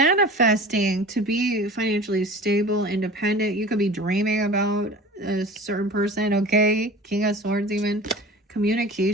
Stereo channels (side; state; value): both; normal; correlation 0.39